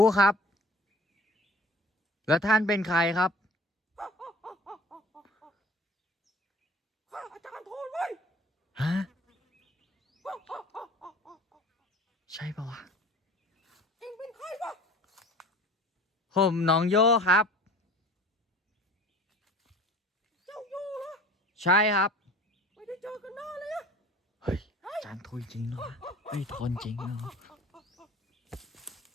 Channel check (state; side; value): normal; both; correlation 0.45